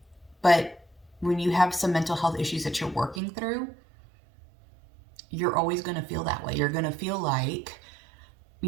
but when you have some mental health issues that you're working through, you're always going to feel that way. You're going to feel like,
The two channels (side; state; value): left; drops out; at 3.2 s